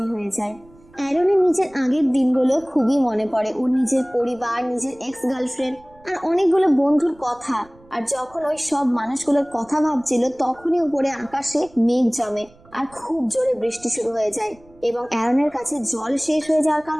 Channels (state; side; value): noise; right; rumble, 27 dB below the sound